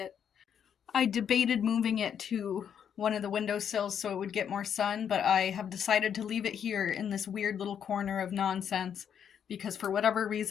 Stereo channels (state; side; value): quieter; right; 8.3 dB